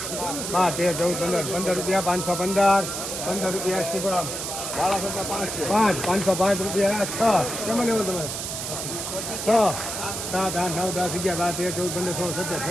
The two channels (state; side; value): noise; right; hiss, 5 dB below the sound